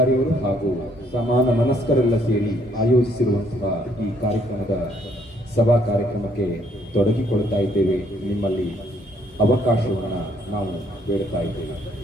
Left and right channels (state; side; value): normal; both; correlation 0.67